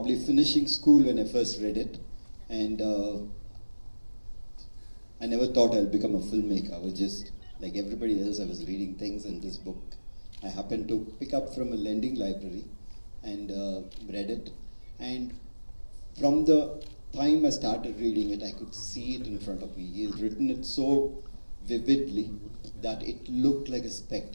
finishing school when I first read it, and I never thought I'd become a filmmaker. I was just like everybody else, I was reading things, and this book I happened to pick up from a lending library and read it. And from the time I started reading it, I could see it in front of me. He has written it so vividly that it looked like a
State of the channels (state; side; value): inverted; both; correlation -1.00